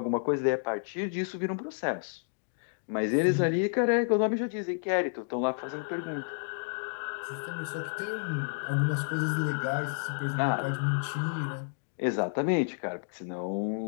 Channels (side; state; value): right; silent; digital silence